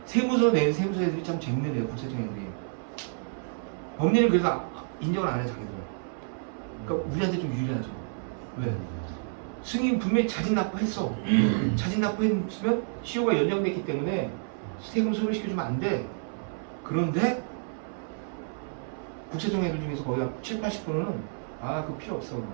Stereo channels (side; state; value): left; silent; 58 dB below the other